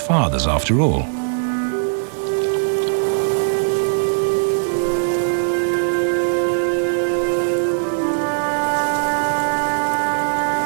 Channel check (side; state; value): left; silent; digital silence